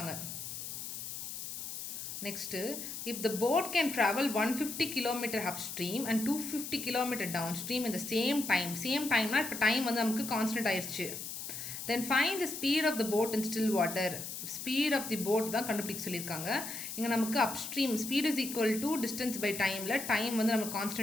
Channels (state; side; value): noise; left; hiss, 7 dB below the sound